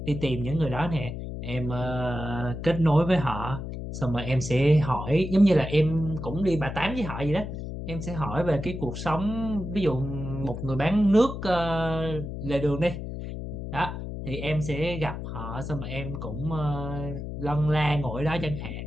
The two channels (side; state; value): left; noise; hum, 7 dB below the sound